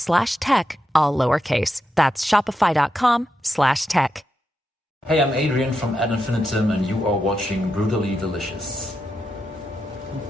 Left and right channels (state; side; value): normal; both; correlation 0.86